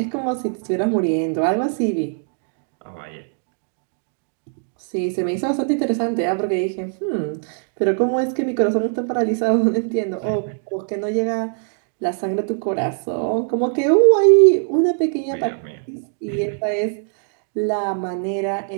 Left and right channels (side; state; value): left; silent; digital silence